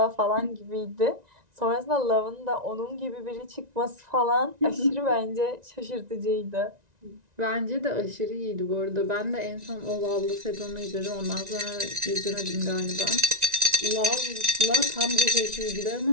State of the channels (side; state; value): left; late; 1.9 ms